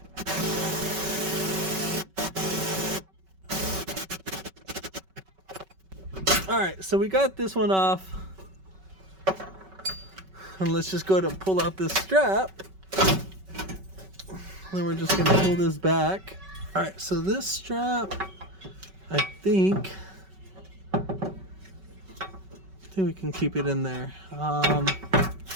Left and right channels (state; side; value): late; left; 5.3 ms